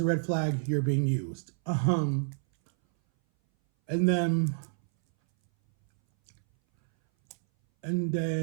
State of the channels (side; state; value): left; silent; 59 dB below the other